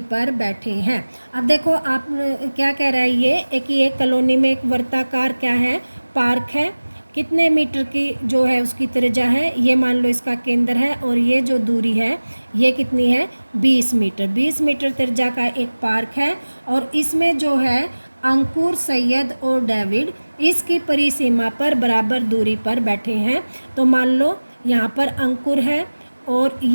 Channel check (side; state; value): both; inverted; correlation -1.00